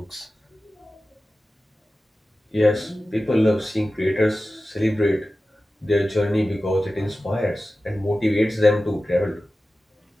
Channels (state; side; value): normal; both; correlation 0.95